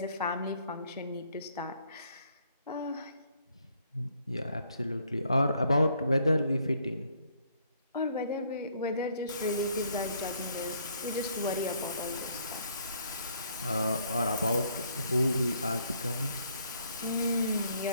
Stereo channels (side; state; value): both; inverted; correlation -0.67